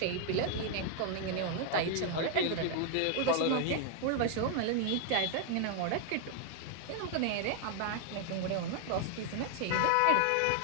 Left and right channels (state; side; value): different; both; correlation 0.00